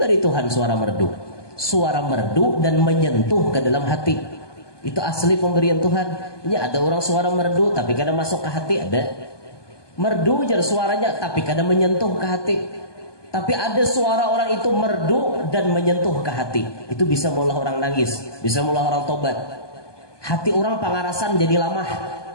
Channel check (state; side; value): late; right; 1.2 ms